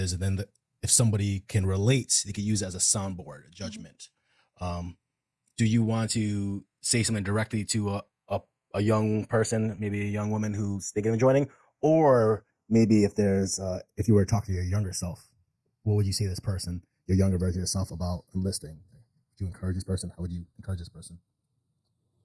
and then if somebody can relate, they could use it as a soundboard, a judgment. Do you want to say something directly to a young person, maybe a young woman who's thinking of joining, or maybe if you were to talk to your younger self, what would you say to this person, your younger version of yourself, about enlisting? Do you encourage this person? How would you encourage this person?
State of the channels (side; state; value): both; identical; correlation 1.00